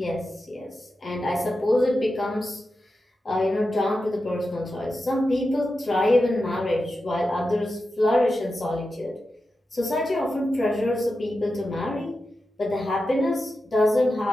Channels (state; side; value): normal; both; correlation 0.90